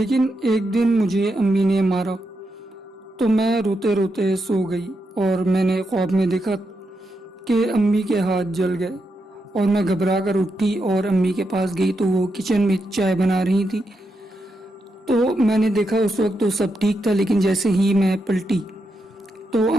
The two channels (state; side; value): normal; both; correlation 0.84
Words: एक दिन मुझे अम्मी ने मारा तो मैं रोते रोते सो गई और मैंने ख्वाब में देखा कि अम्मी के हाथ जल गए और मैं घबरा कर उठी और अम्मी के पास गई तो वो किचन में चाय बना रही थी। तो मैंने देखा उस वक्त तो सब ठीक था, लेकिन जैसे ही मैं पलटी तो